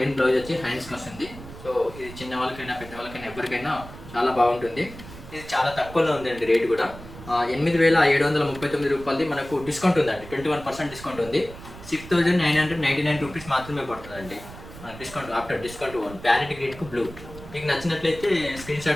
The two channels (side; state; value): right; noise; rumble, 15 dB below the sound